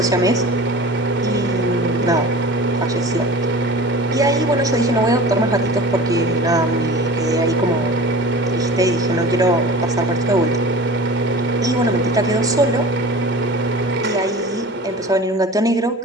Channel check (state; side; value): normal; both; correlation 0.38